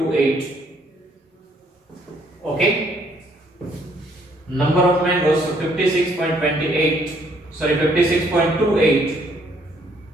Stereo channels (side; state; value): both; normal; correlation 0.66